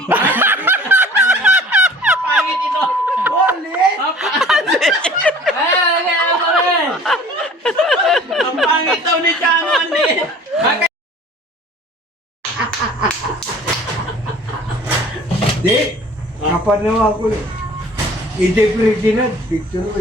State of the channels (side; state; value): both; normal; correlation 0.47